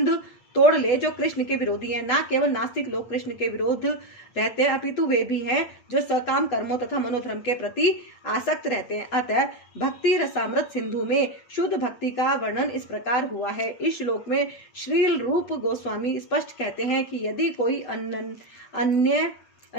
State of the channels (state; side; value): late; right; 8.6 ms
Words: तोड़ ले जो कृष्ण के विरोधी हैं। न केवल नास्तिक लोग कृष्ण के विरोध रहते हैं, अपितु वे भी हैं जो सकाम कर्मों तथा मनोधर्म के प्रति आसक्त रहते हैं। अतः भक्ति रसामृत सिंधु में शुद्ध भक्ति का वर्णन इस प्रकार हुआ है। इस श्लोक में श्रील रूप गोस्वामी स्पष्ट कहते हैं कि यदि कोई अनन्य